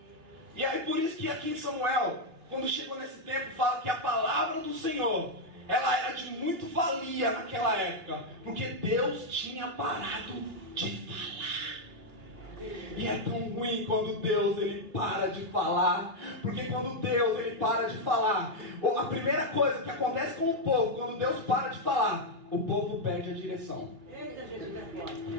E aí por isso que aqui em Samuel, quando chegou nesse tempo, fala que a palavra do Senhor, ela era de muito valia naquela época, porque Deus tinha parado de falar. E é tão ruim quando Deus, ele para de falar, porque quando Deus, ele para de falar, a primeira coisa que acontece com o povo, quando Deus para de falar, o povo perde a direção.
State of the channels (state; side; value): late; left; 3.1 ms